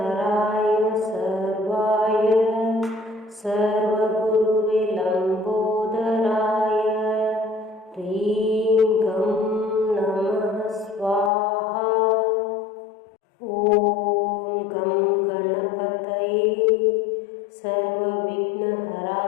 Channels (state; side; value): drops out; right; at 11.3 s